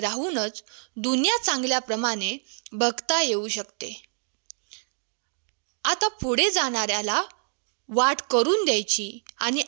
दुनिया चांगल्याप्रमाणे बघता येऊ शकते. आता पुढे जाणाऱ्याला वाट करून द्यायची आणि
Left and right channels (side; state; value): left; silent; 60 dB below the other